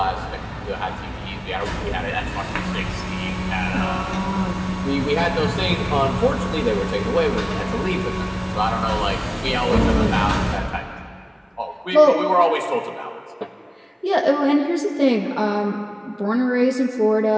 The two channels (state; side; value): identical; both; correlation 1.00